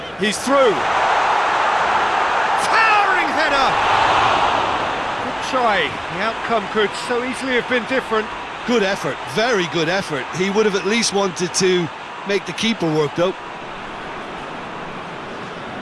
He's through. Towering header! Good try. The outcome could so easily have been different. Good effort, very good effort. He would have at least wanted to make the keeper work, though.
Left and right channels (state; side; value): identical; both; correlation 1.00